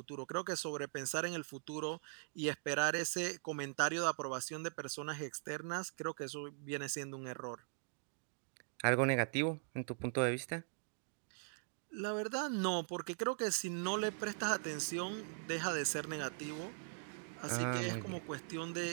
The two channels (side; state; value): left; silent; digital silence